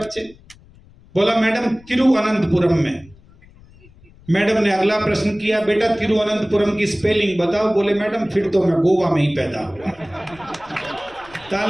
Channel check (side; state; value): left; noise; rumble, 25 dB below the sound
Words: बोला मैडम तिरुवनंतपुरम में। मैडम ने अगला प्रश्न किया, बेटा तिरुवनंतपुरम की स्पेलिंग बताओ। बोले मैडम फिर तो मैं गोवा में ही पैदा हुआ।